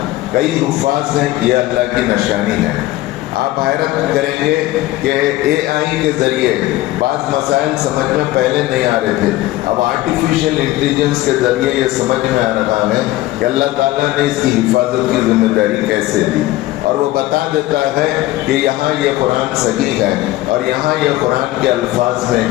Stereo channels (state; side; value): quieter; right; 16.8 dB